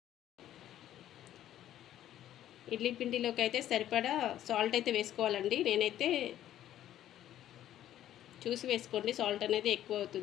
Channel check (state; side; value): quieter; right; 12.1 dB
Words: ఇడ్లీ పిండిలోకి అయితే సరిపడా సాల్ట్ అయితే వేసుకోవాలండి. నేనైతే చూసి వేసుకోండి, సాల్ట్ అనేది ఎక్కువ